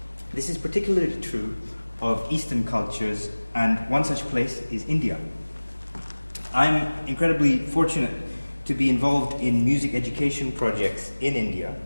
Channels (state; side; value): inverted; both; correlation -1.00